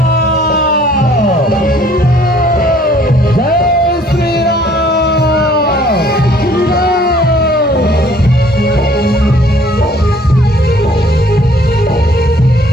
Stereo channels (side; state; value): both; normal; correlation 0.58